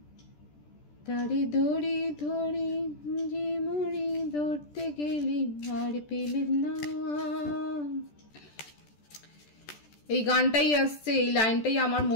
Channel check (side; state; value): right; late; 14 ms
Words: তারে ধরি ধরি যে মরি, ধরতে গেলে আর পেলেম না। এই গানটাই আসছে, এই লাইনটাই আমার